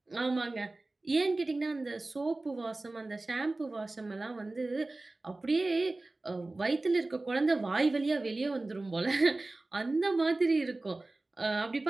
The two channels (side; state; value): left; quieter; 3.0 dB